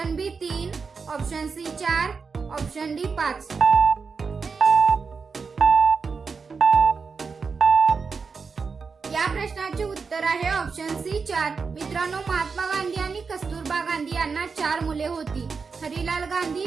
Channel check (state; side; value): quieter; left; 5.1 dB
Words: B 3, option C 4, option D 5. या प्रश्नाचे उत्तर आहे ऑप्शन सी 4. मित्रांनो, महात्मा गांधी आणि कस्तुरबा गांधी यांना 4 मुले होती. हरिलाल गांधी,